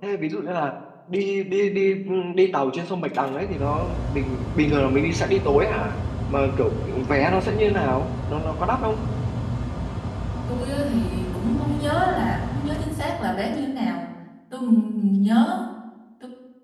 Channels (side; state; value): both; identical; correlation 1.00